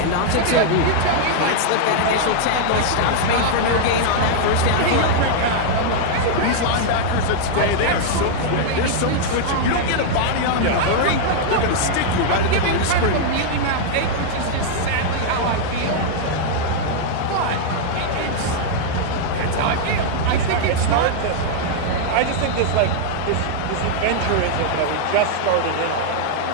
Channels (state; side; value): different; both; correlation -0.01